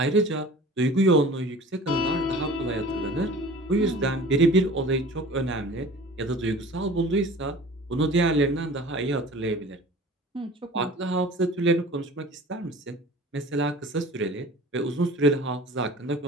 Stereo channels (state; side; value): normal; both; correlation 0.43